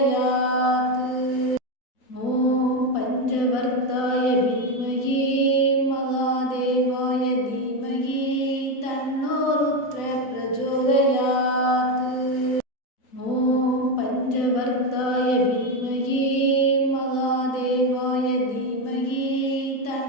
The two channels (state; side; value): late; right; 3.9 ms